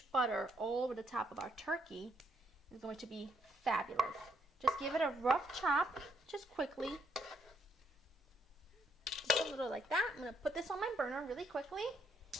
butter all over the top of our turkey. It's going to be fabulous. Just give it a rough chop, just quickly. Just a little like that. I'm going to put this on my burner really quickly.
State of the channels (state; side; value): normal; both; correlation 0.73